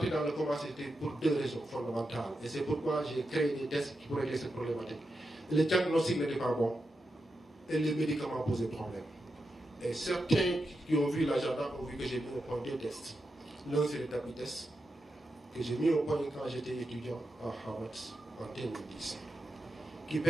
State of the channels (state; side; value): normal; both; correlation 0.88